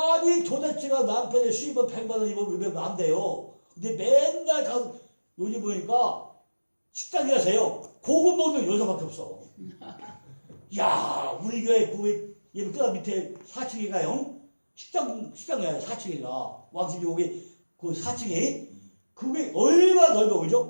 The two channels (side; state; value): both; inverted; correlation -1.00